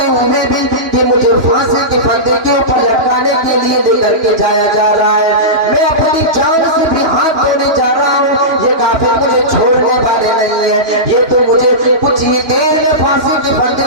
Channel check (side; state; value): left; late; 2.9 ms